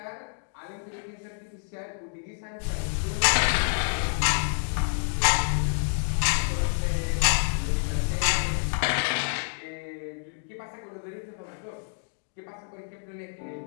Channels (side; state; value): right; silent; digital silence